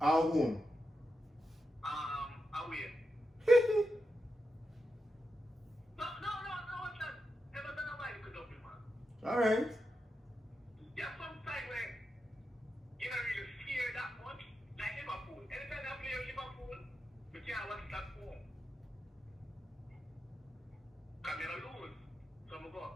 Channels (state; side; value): normal; both; correlation 0.88